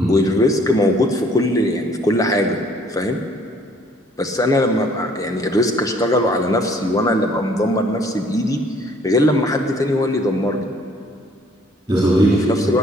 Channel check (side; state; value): both; normal; correlation 0.60